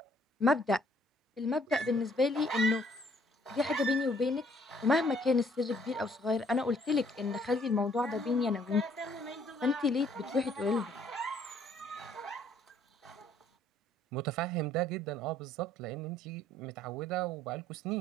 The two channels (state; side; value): normal; both; correlation 0.63